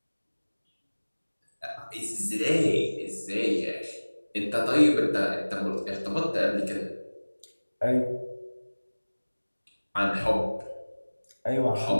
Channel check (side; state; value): both; inverted; correlation -1.00